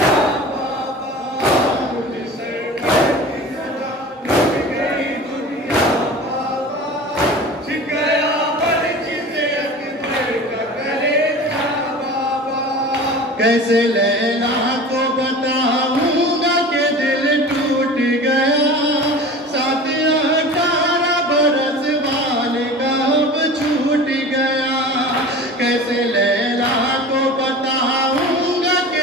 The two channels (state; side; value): normal; both; correlation 0.37